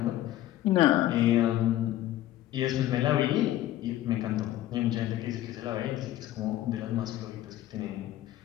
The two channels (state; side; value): quieter; right; 13.8 dB